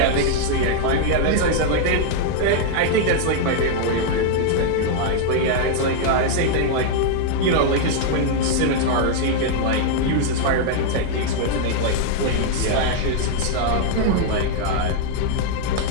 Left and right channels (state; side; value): different; both; correlation -0.01